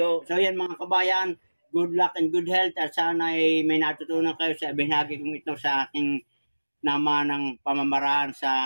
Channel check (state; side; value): inverted; both; correlation -1.00